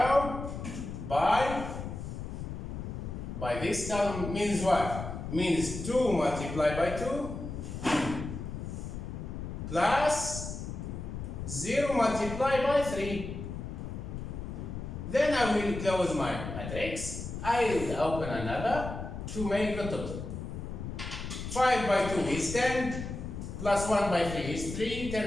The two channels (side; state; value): left; noise; rumble, 7 dB below the sound